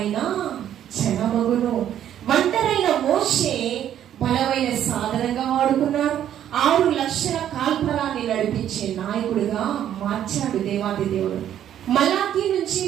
జనమగును. ఒంటరైన మోషే బలమైన సాధనంగా వాడుకున్నాడు. 6 లక్షల కాల్పరాన్ని నడిపించే నాయకుడిగా మార్చాడు దేవాది దేవుడు. మలాకి నుంచి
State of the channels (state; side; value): quieter; left; 10.6 dB